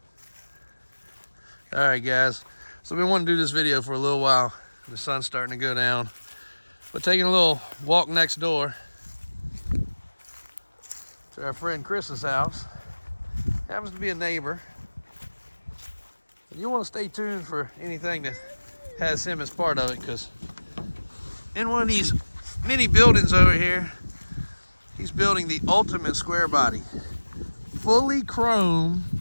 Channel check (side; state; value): both; inverted; correlation -1.00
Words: All right, guys. So we want to do this video for a little while. The sun's starting to go down. But taking a little walk next door to our friend Chris's house. Happens to be a neighbor. And you want to stay tuned for anything that has him as part of it, because in one of these mini buildings over here, he's building the ultimate square body. Fully chrome